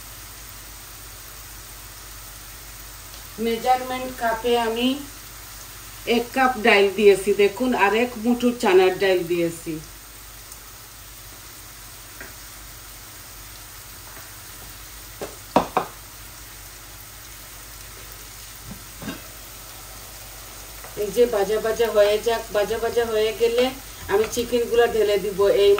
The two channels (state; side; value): identical; both; correlation 1.00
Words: মেজারমেন্ট কাপে আমি 1 কাপ ডাইল দিয়েছি দেখুন, আর 1 মুঠো চানার ডাইল দিয়েছি। এই যে ভাজা ভাজা হয়ে যাক, ভাজা ভাজা হয়ে গেলে আমি চিকেনগুলো ঢেলে দিব এই